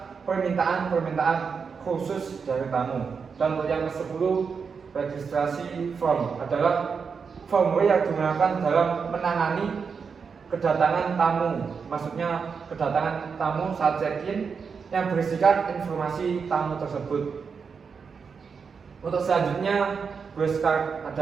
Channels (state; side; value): quieter; left; 5.7 dB